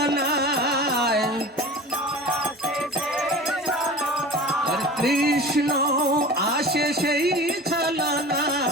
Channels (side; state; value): both; normal; correlation 0.37